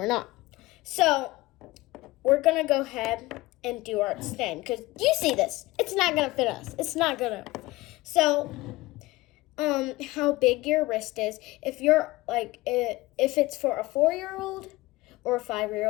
not. So, we're going to go ahead and do our extend, because you see this. It's not going to fit us. It's not going to. So, how big your wrist is. If you're like, if it's for a 4-year-old or a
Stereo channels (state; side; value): quieter; right; 19.9 dB